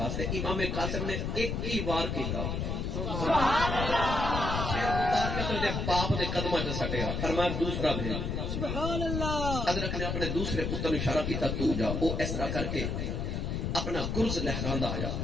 امام قاسم نے ایک ہی وار کیتا سبحان اللہ پھر اتار کے تو دے باپ دے قدمہ جو سٹیا فرمایا دوسرا بھیج سبحان اللہ ادرک نے اپنے دوسرے پتر نے اشارہ کیتا تو جا وہ اس طرح کر کے اپنا گرز لہراندہ آیا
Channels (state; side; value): noise; left; rumble, 2 dB below the sound